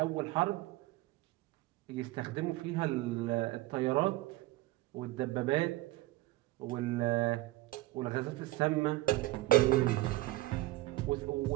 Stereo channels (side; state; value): left; quieter; 18.4 dB